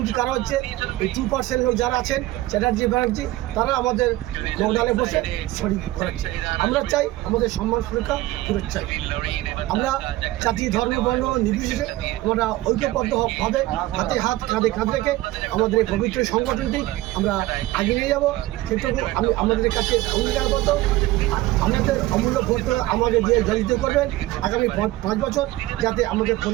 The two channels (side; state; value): left; quieter; 17.1 dB